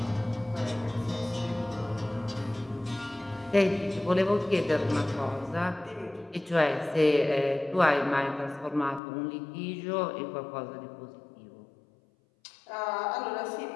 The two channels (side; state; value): right; drops out; at 9.0 s